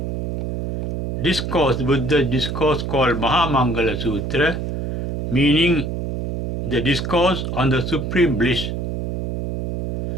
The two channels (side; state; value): right; noise; hum, 3 dB below the sound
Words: discourse, Buddha's discourse called Maha Mangala Sutta, meaning the discourse on the supreme bliss,